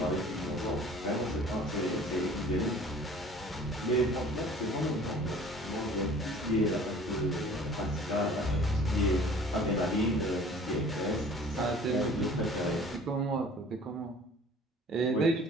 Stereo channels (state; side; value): normal; both; correlation 0.48